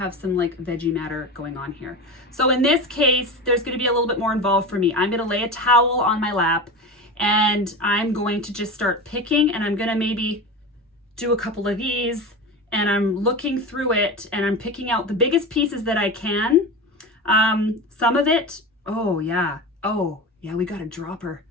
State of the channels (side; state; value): both; normal; correlation 0.26